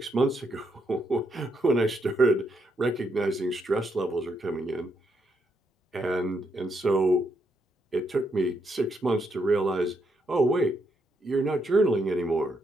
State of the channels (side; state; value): both; normal; correlation 0.78